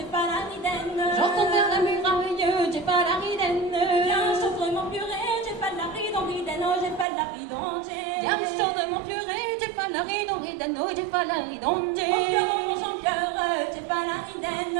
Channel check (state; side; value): drops out; left; at 7.1 s